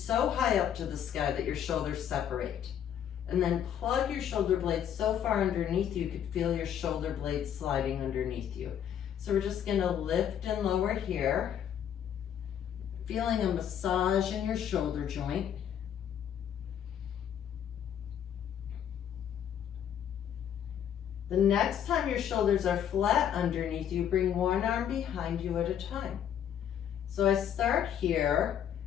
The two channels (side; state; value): right; quieter; 9.4 dB